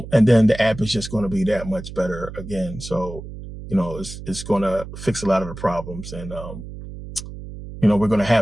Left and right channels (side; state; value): right; noise; hum, 12 dB below the sound